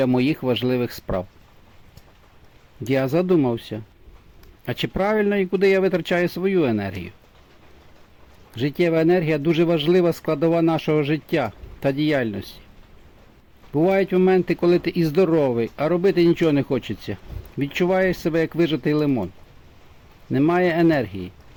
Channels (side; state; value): both; identical; correlation 1.00